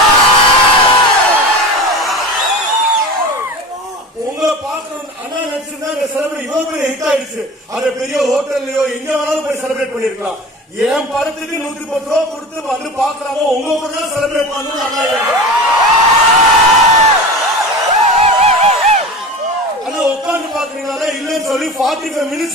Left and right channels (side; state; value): both; normal; correlation 0.33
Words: உங்களை பார்க்கணும் அண்ணா நினைச்சிருந்தா இந்த செலிபிரேட் இவ்வளவு பெரிய ஹிட் ஆயிடுச்சு. அதை பெரிய ஹோட்டல்லையோ எங்க வேணாலும் போய் செலிபிரேட் பண்ணிருக்கலாம். என் படத்துக்கு 110 ரூபா கொடுத்து வந்து பாக்குறாங்க, உங்க கூட தான் செலிபிரேட் பண்ணணும். ஆனா உட்காந்து பாக்குறீங்களா இல்லன்னு சொல்லி 45